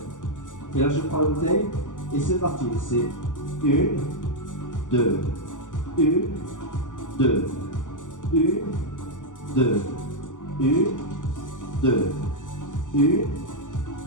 Et là, je prends la bouteille et c'est parti. C'est 1, 2, 1, 2, 1, 2, 1, 2, 1,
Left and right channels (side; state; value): right; late; 0.87 ms